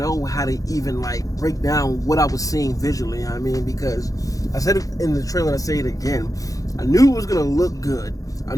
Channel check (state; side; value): late; right; 0.17 ms